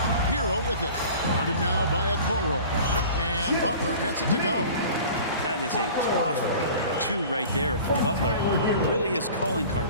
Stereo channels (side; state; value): both; inverted; correlation -0.42